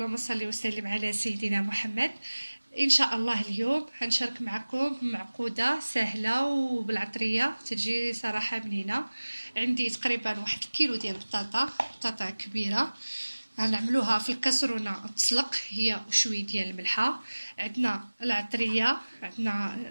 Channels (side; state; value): both; inverted; correlation -1.00